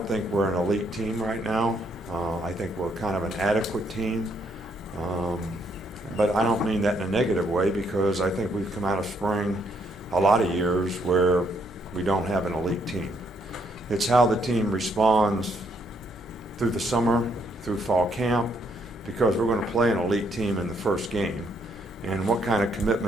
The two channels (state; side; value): normal; both; correlation 0.72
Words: think we're an elite team right now. I think we're kind of an adequate team. But I don't mean that in a negative way, because I think we've come out of spring a lot of years where we don't have an elite team. It's how the team responds through the summer, through fall camp, because we're going to play an elite team in the first game. And what kind of